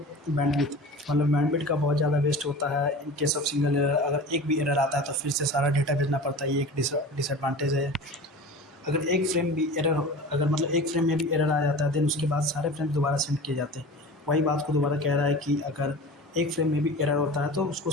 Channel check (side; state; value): both; normal; correlation 0.36